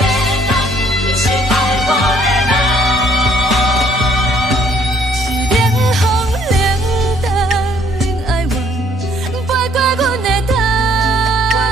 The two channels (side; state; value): both; normal; correlation 0.62